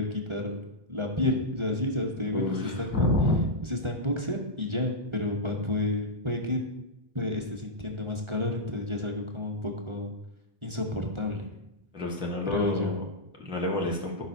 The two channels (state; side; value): late; left; 1.4 ms